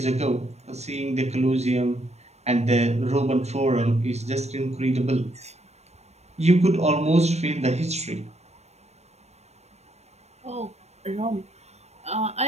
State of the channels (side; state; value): left; late; 0.31 ms